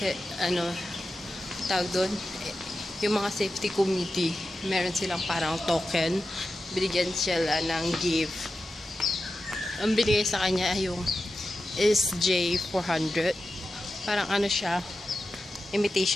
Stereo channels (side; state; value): both; normal; correlation 0.92